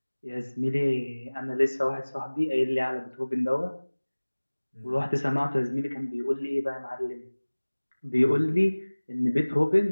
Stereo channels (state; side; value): inverted; both; correlation -1.00